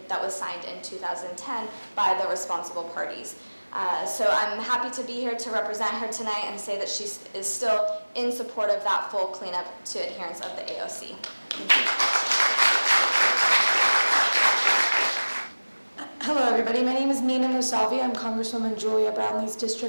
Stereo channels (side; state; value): both; inverted; correlation -1.00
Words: that was signed in 2010 by the responsible parties. So I'm happy to be here to represent her tonight and say that she is still in support of that full cleanup to adherence of the AOC. Thank you. Hello, everybody. My name is Nina Musavi. I'm Congresswoman Julia Brownlee's